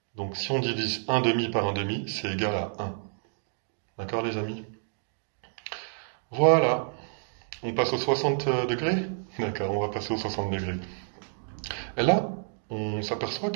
Donc, si on divise 1 demi par 1 demi, c'est égal à 1. D'accord, les amis? Voilà. On passe aux 60 degrés? D'accord, on va passer aux 60 degrés. Et là, on s'aperçoit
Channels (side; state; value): left; silent; digital silence